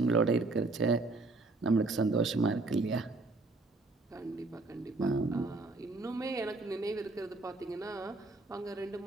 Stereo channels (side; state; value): left; quieter; 3.3 dB